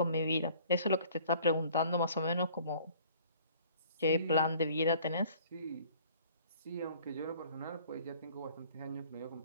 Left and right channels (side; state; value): both; inverted; correlation -0.53